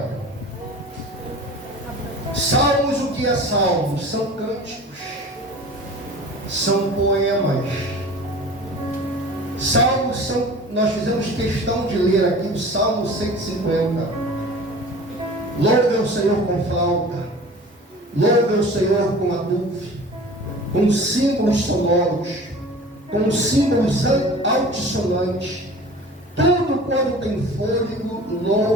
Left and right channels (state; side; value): normal; both; correlation 0.41